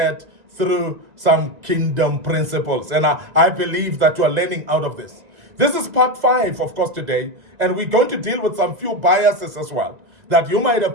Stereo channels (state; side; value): late; left; 1.9 ms